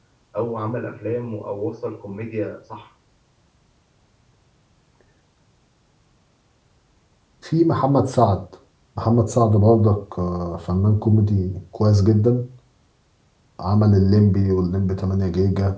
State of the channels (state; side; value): identical; both; correlation 1.00